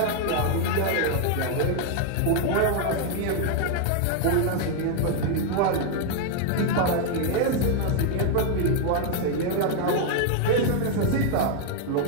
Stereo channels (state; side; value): different; both; correlation 0.00